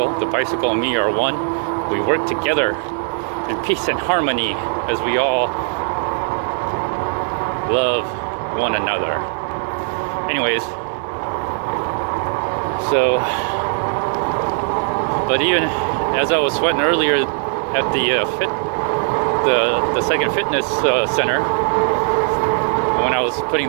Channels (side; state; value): left; silent; digital silence